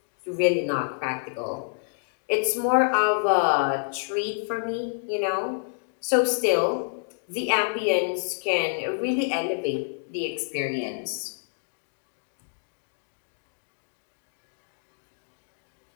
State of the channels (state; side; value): silent; right; digital silence